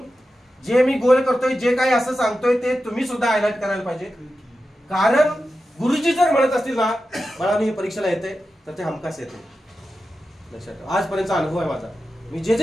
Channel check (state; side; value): normal; both; correlation 0.91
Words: जे मी गोल करतोय, जे काही असं सांगतोय ते तुम्ही सुद्धा हायलाइट करायला पाहिजे. कारण गुरुजी जर म्हणत असतील ना बाळांनी हे परीक्षेला येते, तर ते हमखास येते. लक्षात ठेवा, आजपर्यंतचा अनुभव आहे माझा. मी जे